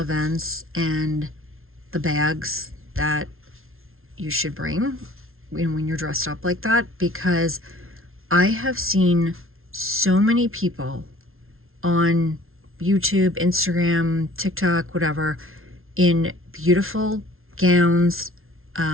and the bags that you should bring when you're dressed up like that, because I have seen so many people on YouTube, Instagram, TikTok, whatever, in beautiful gowns,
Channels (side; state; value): left; late; 0.61 ms